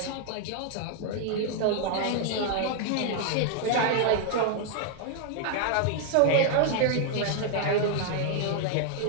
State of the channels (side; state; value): both; different; correlation 0.00